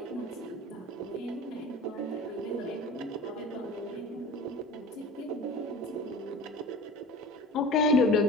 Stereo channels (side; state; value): both; normal; correlation 0.37